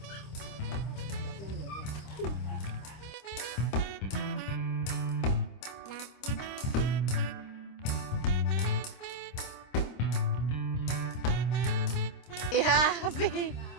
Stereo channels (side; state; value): right; late; 26 ms